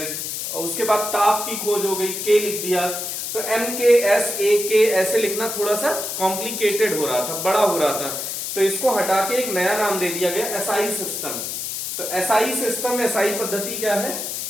उसके बाद ताप की खोज हो गई, के लिख दिया। तो एम के एस ए के ऐसे लिखना थोड़ा सा कॉम्प्लिकेटेड हो रहा था, बड़ा हो रहा था। तो इसको हटा के एक नया नाम दे दिया गया, एसआई सिस्टम। तो एसआई सिस्टम, एसआई पद्धति क्या है,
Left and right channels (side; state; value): left; noise; hiss, 4 dB below the sound